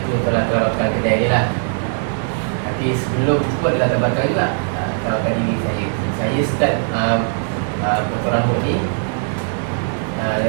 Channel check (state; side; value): silent; left; 66 dB below the other